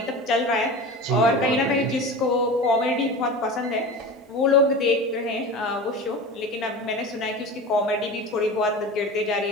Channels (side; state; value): both; normal; correlation 0.32